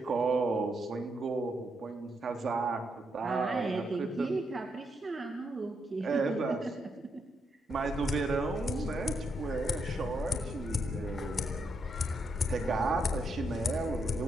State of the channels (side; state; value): both; normal; correlation 0.79